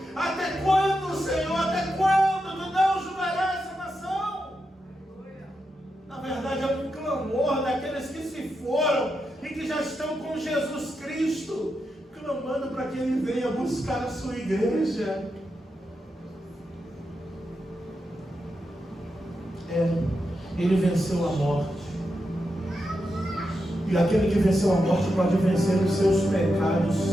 até quando, Senhor, até quando tu não julgarás essa nação? Na verdade, é um clamor daqueles que se foram e que já estão com Jesus Cristo, clamando para que Ele venha buscar a sua igreja. Ele venceu a morte. E aquele que venceu a morte pode vencer os seus pecados.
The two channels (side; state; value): both; normal; correlation 0.87